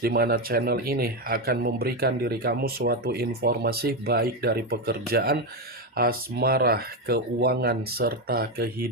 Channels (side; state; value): both; normal; correlation 0.09